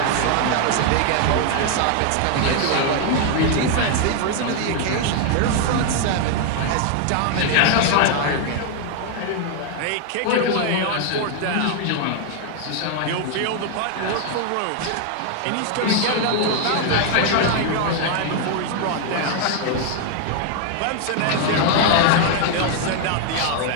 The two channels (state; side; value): different; both; correlation 0.00